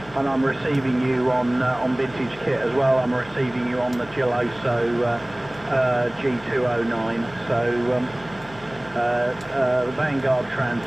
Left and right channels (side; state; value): left; noise; hum, 21 dB below the sound